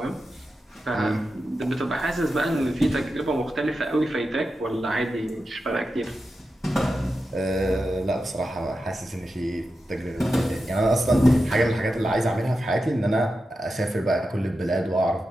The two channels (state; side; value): normal; both; correlation 0.90